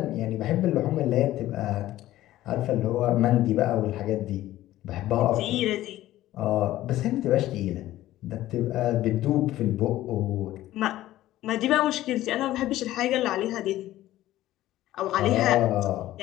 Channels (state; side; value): quieter; right; 14.9 dB